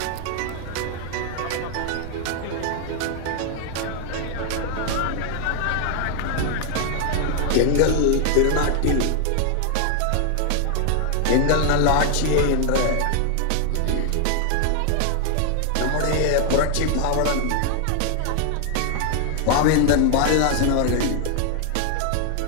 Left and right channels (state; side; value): different; both; correlation 0.00